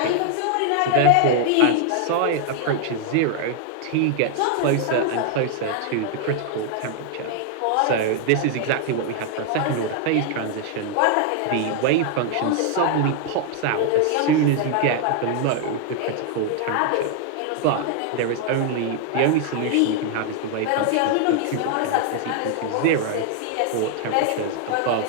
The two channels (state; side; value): different; both; correlation 0.00